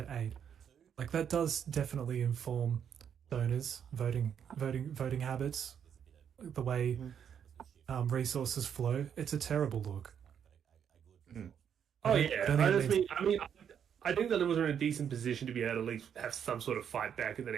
8. Like, that does definitely inform donors, voting habits, the way resources flow. It's a terrible look. Oh yeah, I think the Liberals are in a decent position to be able to at least have some sort of fight back in the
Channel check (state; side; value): quieter; left; 8.3 dB